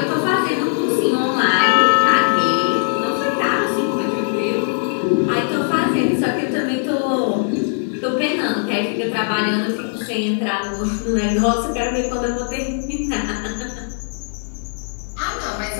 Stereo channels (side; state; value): right; silent; 66 dB below the other